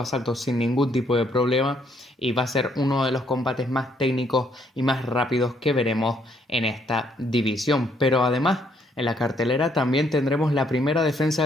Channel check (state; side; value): normal; both; correlation 0.70